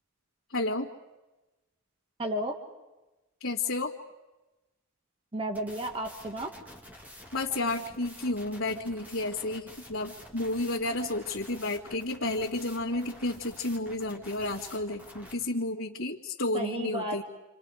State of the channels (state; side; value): normal; both; correlation 0.03